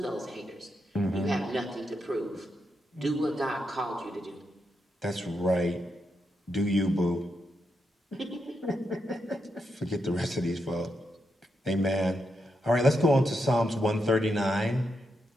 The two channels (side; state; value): both; normal; correlation 0.83